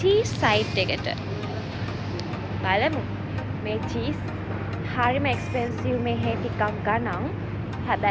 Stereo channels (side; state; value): both; identical; correlation 1.00